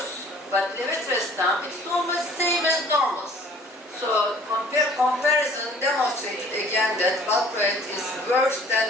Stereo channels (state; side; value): normal; both; correlation 0.53